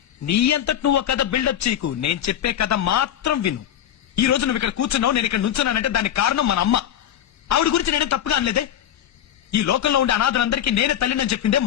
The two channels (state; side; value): quieter; right; 10.7 dB